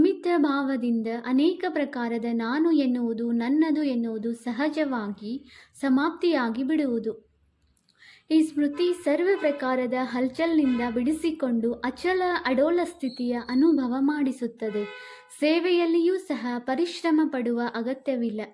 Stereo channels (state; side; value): identical; both; correlation 1.00